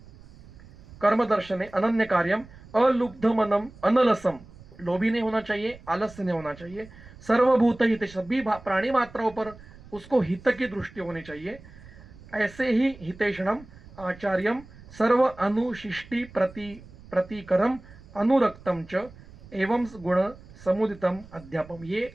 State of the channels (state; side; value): noise; right; rumble, 20 dB below the sound